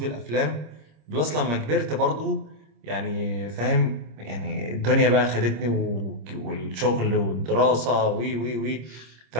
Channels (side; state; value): left; late; 26 ms